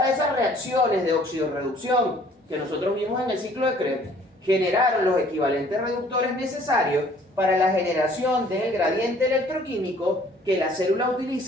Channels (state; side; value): normal; both; correlation 0.57